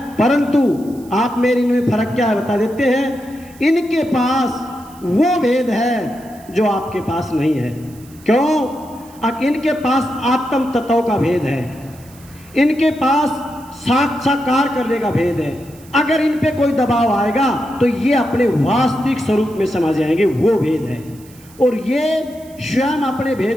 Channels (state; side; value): noise; right; hiss, 25 dB below the sound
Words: परंतु आप मेरे इनमें फर्क क्या है बता देते हैं। इनके पास वो भेद है जो आपके पास नहीं है। क्यों? इनके पास आत्म तत्व का भेद है, इनके पास साक्षात्कार करने का भेद है। अगर इन पे कोई दबाव आएगा तो ये अपने वास्तविक स्वरूप में समा जाएंगे, वो भेद है। और ये स्वयं अपने